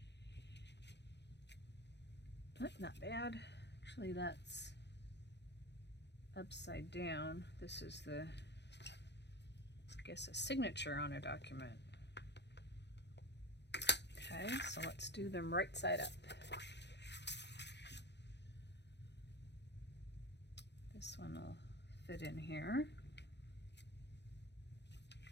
Not bad. Actually, that's upside down. This is the, I guess, a signature on a document. Okay, so let's do them right side up. This one will fit in here.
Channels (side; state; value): right; late; 0.50 ms